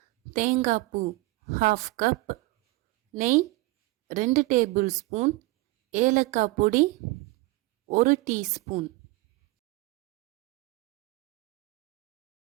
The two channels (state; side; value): quieter; left; 21.8 dB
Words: தேங்காய் பூ 1/2 கப், நெய் 2 டேபிள் ஸ்பூன், ஏலக்காய் பொடி 1 டீஸ்பூன்.